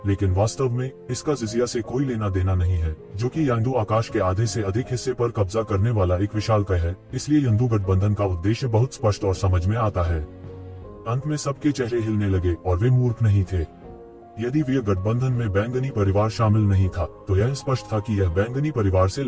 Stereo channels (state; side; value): identical; both; correlation 1.00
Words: लेकिन वास्तव में इसका जिजिया से कोई लेना देना नहीं है, जो कि यंदू आकाश के आधे से अधिक हिस्से पर कब्जा करने वाला एक विशालकाय है। इसलिए यंदू गठबंधन का उद्देश्य बहुत स्पष्ट और समझ में आता है। अंत में सबके चेहरे हिलने लगे और वे मूर्ख नहीं थे। यदि वे गठबंधन में बैंगनी परिवार शामिल नहीं था, तो यह स्पष्ट था कि यह बैंगनी परिवार से